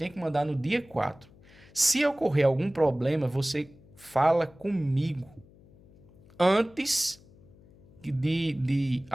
que mandar no dia 4. Se ocorrer algum problema, você fala comigo antes de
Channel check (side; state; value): left; noise; hum, 25 dB below the sound